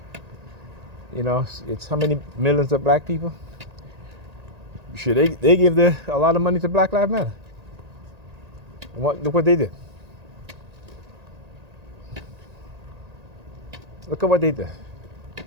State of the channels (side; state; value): left; late; 1.8 ms